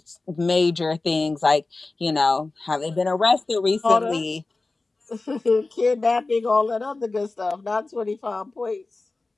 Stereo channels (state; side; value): quieter; right; 3.4 dB